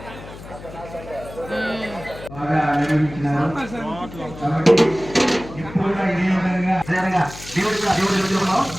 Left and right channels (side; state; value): left; noise; hum, 15 dB below the sound